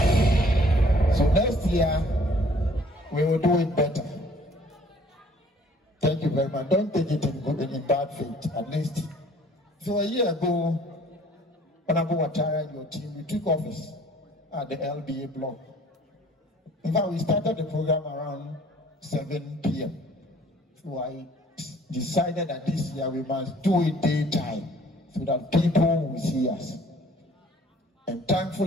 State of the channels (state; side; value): normal; both; correlation 0.56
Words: So next year, we will do it better. Thank you very much. Don't take it in good and in bad faith, at least. So a year ago, Honorable Ouattara and your team, we took office at the LBA block. In fact, we started the program around 7 p.m. So I decided that this year we must do it daytime so that people will see us. And